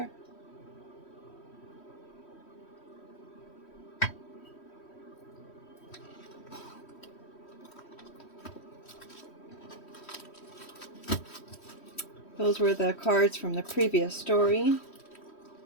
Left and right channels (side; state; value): right; late; 3.1 ms